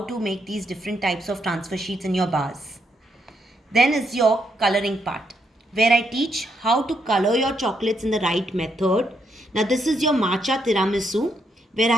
to make these different types of transfer sheets in your bars. Then is your coloring part, where I teach how to color your chocolates in the right method. Now this is your matcha tiramisu, where I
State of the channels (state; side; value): normal; both; correlation 0.77